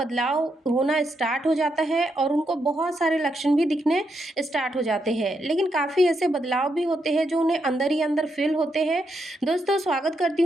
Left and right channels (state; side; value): normal; both; correlation 0.81